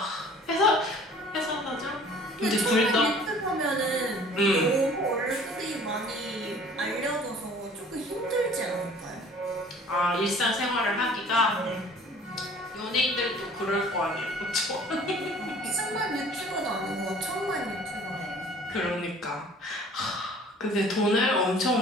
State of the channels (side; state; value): both; normal; correlation 0.50